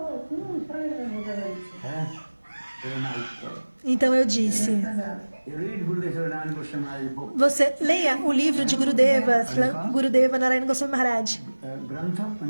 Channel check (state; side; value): inverted; both; correlation -1.00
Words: правильно вы говорите. Very nice. Então eu disse, Сказали. You read Gurudeva Narayana Goswami's book, você leia o livro de Gurudeva Narayana Goswami Maharaj, Grantha